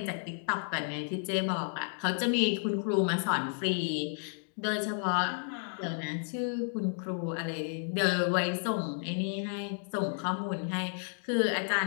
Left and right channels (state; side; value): silent; right; 56 dB below the other